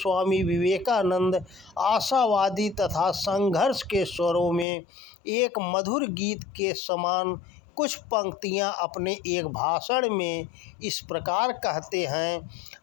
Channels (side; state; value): right; drops out; at 4.7 s